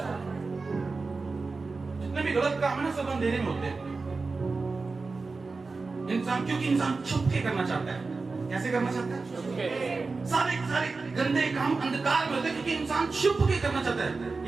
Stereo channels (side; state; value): left; quieter; 4.0 dB